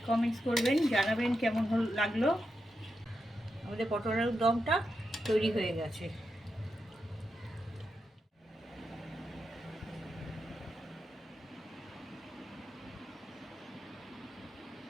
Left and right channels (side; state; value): both; normal; correlation 0.87